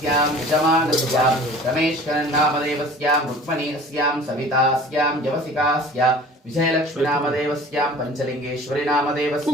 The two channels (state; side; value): normal; both; correlation 0.45